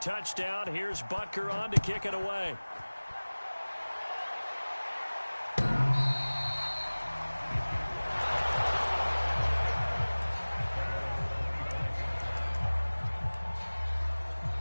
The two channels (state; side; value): inverted; both; correlation -1.00